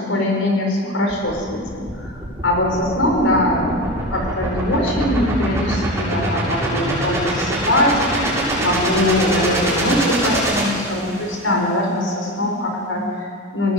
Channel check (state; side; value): normal; both; correlation 0.24